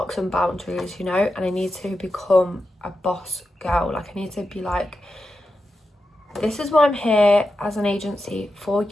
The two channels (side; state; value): both; normal; correlation 0.89